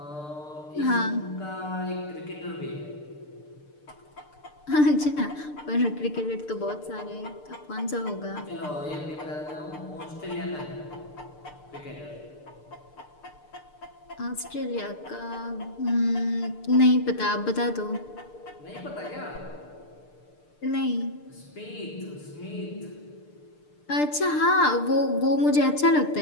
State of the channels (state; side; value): late; right; 6.7 ms